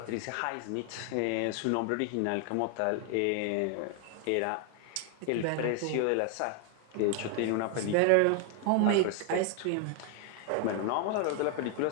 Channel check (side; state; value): both; different; correlation 0.01